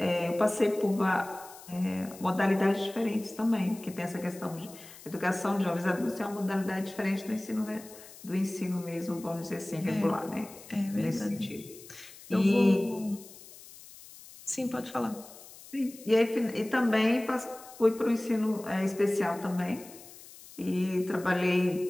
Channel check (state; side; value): noise; left; hiss, 19 dB below the sound